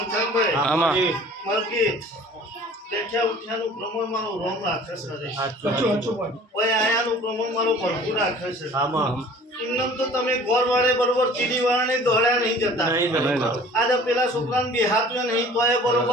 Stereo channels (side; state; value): both; normal; correlation 0.48